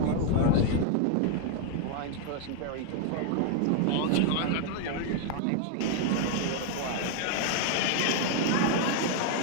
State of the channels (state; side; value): different; both; correlation 0.00